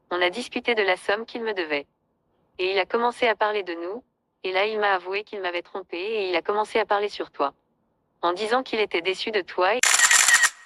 On a discuté de la somme qu'il me devait. Et il a commencé à parler de nous, et là il m'a avoué qu'il m'avait trompé et il a commencé à parler sur toi. En disant qu'il était déçu de toi et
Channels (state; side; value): identical; both; correlation 1.00